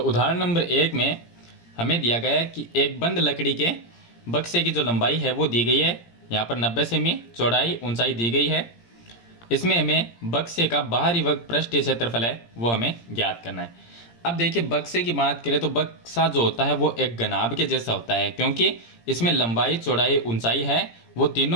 उदाहरण नंबर 1 में हमें दिया गया है कि एक बंद लकड़ी के बक्से की जो लंबाई है वो दी गई है, यहाँ पर 90 सेमी, चौड़ाई, ऊंचाई दी गई है। इसमें हमें बक्से का बाहरी पृष्ठीय क्षेत्रफल है वो हमें ज्ञात करना है। अब देखिए, बक्से की बात करें तो बक्सा जो होता है वो एक घनाभ के जैसा होता है, क्योंकि इसमें लंबाई, चौड़ाई, ऊंचाई है वो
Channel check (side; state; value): right; late; 17 ms